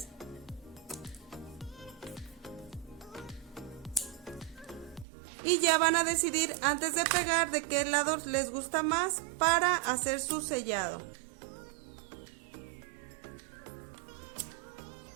Y ya van a decidir antes de pegar de qué lado les gusta más para hacer su sellado.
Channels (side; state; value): left; drops out; at 5.1 s